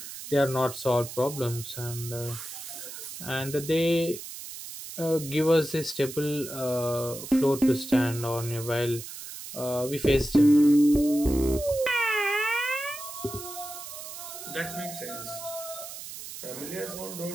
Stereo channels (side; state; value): right; noise; hiss, 11 dB below the sound